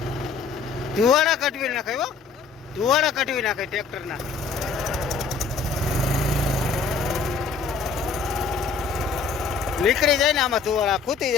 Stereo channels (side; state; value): right; quieter; 5.0 dB